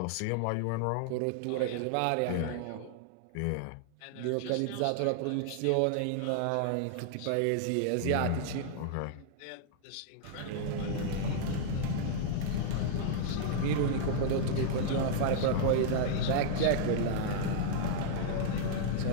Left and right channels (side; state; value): both; different; correlation -0.01